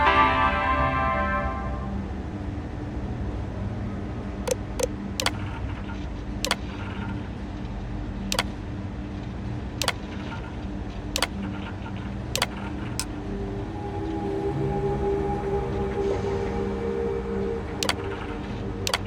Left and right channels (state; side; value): identical; both; correlation 1.00